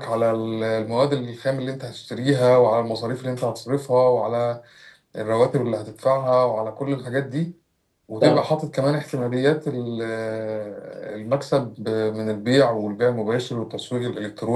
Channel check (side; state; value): both; identical; correlation 1.00